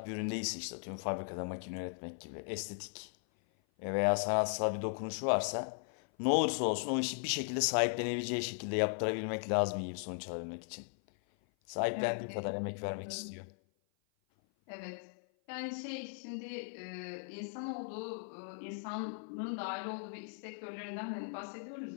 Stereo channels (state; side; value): silent; right; 53 dB below the other